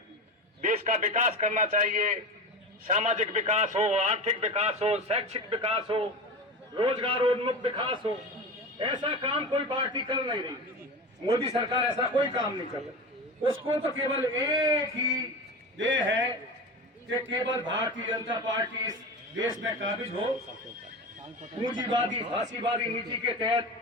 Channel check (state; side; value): normal; both; correlation 0.26